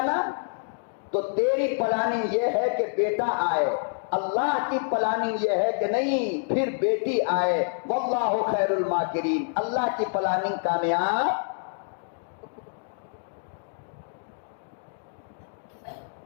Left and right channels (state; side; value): silent; right; digital silence